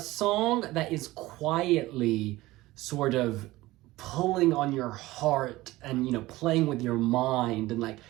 that is quietly sort of pulling on your heart and, you know, playing with your mind. And, like,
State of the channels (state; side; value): quieter; left; 18.4 dB